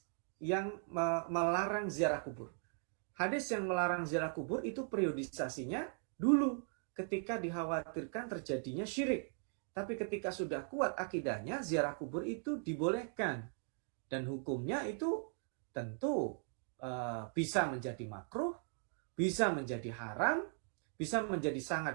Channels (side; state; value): left; silent; 52 dB below the other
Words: yang melarang ziarah kubur. Hadis yang melarang ziarah kubur itu periodisasinya dulu ketika dikhawatirkan terjadinya syirik. Tapi ketika sudah kuat akidahnya, ziarah kubur itu dibolehkan. Dan hukumnya itu tentu bisa menjadi makruh, bisa menjadi haram, bisa menjadi